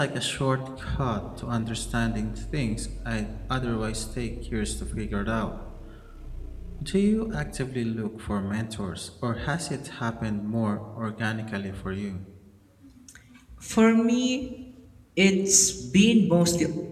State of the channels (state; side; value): identical; both; correlation 1.00